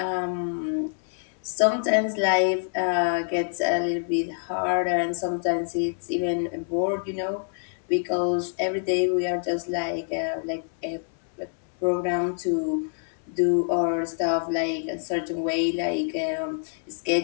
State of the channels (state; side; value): silent; right; 61 dB below the other